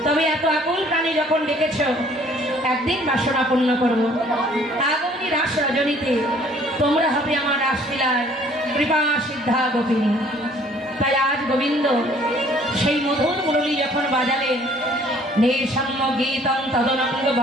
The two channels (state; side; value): normal; both; correlation 0.57